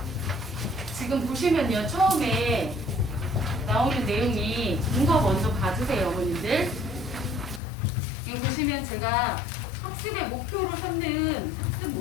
지금 보시면요, 처음에 나오는 내용이 이거 먼저 봐주세요, 어머님들. 이거 보시면 제가 학습의 목표로 삼는 학습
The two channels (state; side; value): drops out; right; at 7.6 s